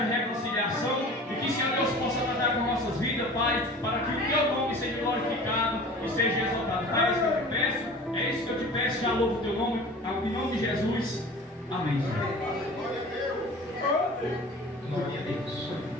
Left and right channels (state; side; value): normal; both; correlation 0.41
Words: reconciliação. E que, Senhor Deus, possa tratar com nossas vidas, Pai. Para que o teu nome seja glorificado e seja exaltado. Pai, é isso que eu te peço. É isso que eu te peço. Já louvo o teu nome. Em nome de Jesus. Amém. Glória a Deus.